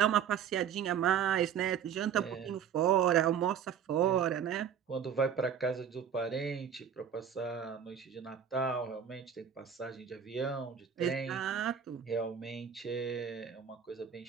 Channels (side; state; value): left; quieter; 8.1 dB